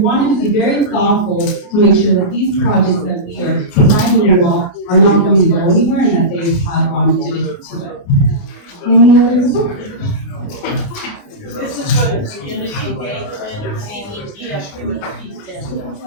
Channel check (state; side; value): late; right; 28 ms